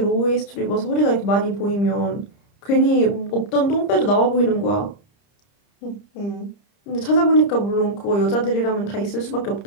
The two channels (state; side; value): late; right; 30 ms